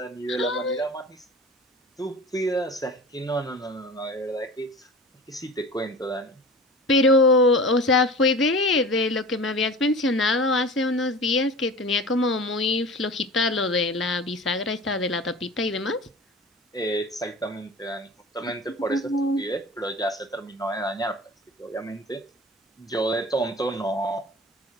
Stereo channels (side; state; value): both; normal; correlation 0.37